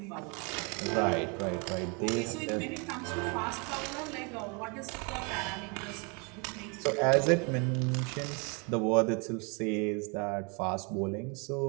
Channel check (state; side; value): quieter; left; 32.4 dB